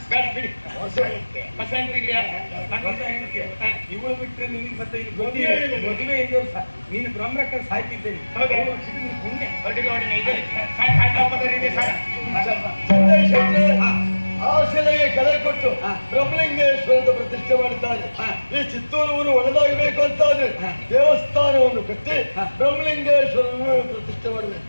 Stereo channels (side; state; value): both; inverted; correlation -1.00